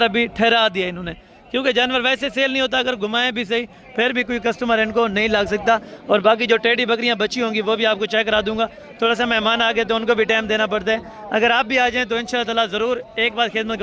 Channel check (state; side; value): identical; both; correlation 1.00